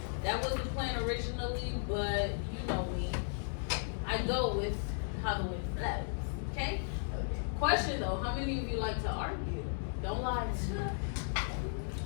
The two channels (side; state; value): right; silent; digital silence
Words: That was the plan originally, but you know me. I go with how the wind blows, okay? Question though, how many of you like to argue? Don't lie.